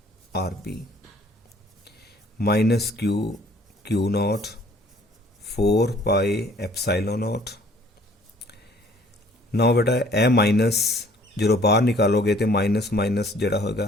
RB माइनस Q नॉट 4 पाई एप्सिलॉन नॉट। ना बेटा ए माइनस जो बाहर निकालोगे तो माइनस जोड़ा होगा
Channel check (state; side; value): normal; both; correlation 0.56